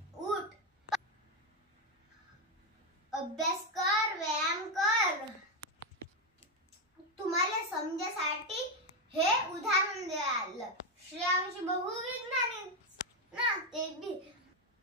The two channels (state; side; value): normal; both; correlation 0.06